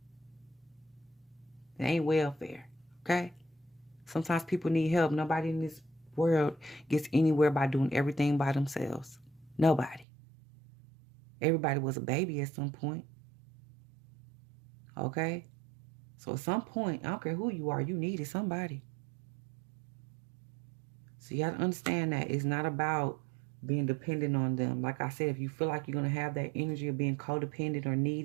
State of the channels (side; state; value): left; drops out; at 10.1 s